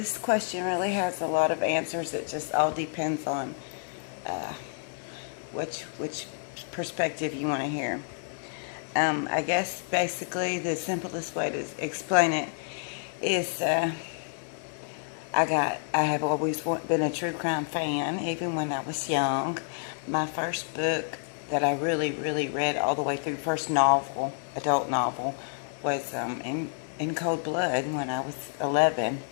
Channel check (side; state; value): right; silent; digital silence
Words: question really has a lot of answers. It just all depends on uh, which perspective you want to hear. I guess basically the simplest way to explain it is I have always been a true crime fan, even when I was young. My first book that I really read all the way through, first novel, adult novel, was in Cold Blood when I was 11.